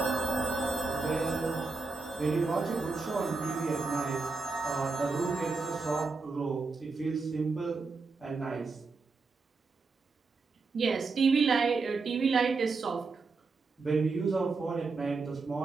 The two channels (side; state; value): left; quieter; 4.1 dB